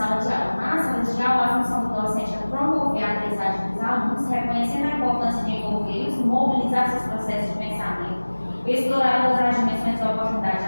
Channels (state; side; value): inverted; both; correlation -1.00